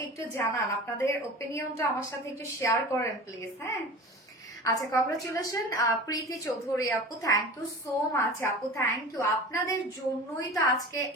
একটু জানান, আপনাদের ওপিনিয়নটা আমার সাথে একটু শেয়ার করেন প্লিজ। হ্যাঁ, আচ্ছা, কংগ্রাচুলেশন প্রীতি চৌধুরী আপু, থ্যাংক ইউ সো মাচ আপু, থ্যাংক ইউ। আপনাদের জন্যই তো আজকে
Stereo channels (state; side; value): normal; both; correlation 0.35